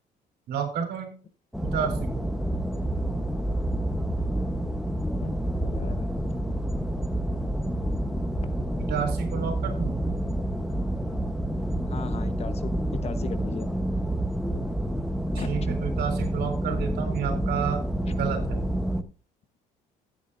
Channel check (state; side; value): normal; both; correlation 0.81